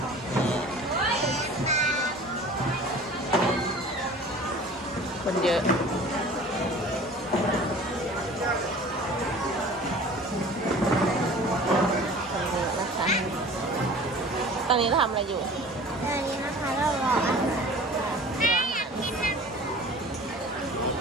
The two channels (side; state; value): both; normal; correlation 0.43